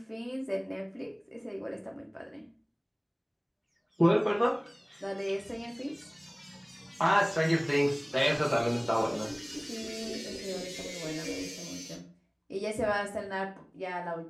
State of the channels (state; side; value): identical; both; correlation 1.00